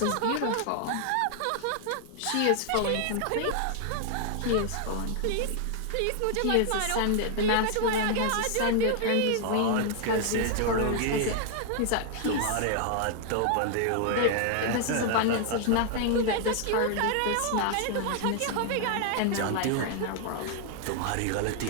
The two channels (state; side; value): different; both; correlation 0.00